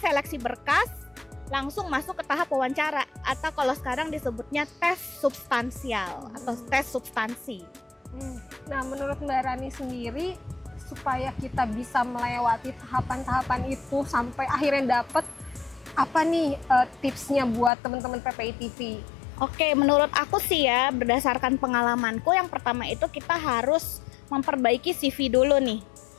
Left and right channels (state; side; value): drops out; right; at 17.7 s